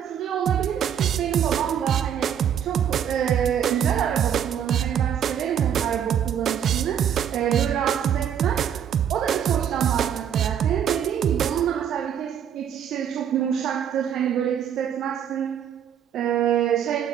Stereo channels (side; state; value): left; quieter; 8.9 dB